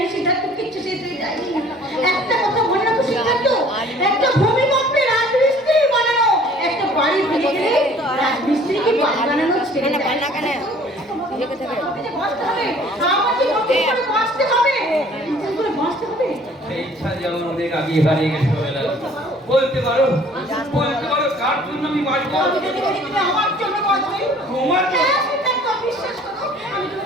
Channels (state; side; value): normal; both; correlation 0.53